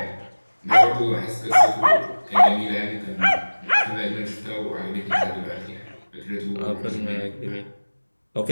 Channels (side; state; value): both; inverted; correlation -1.00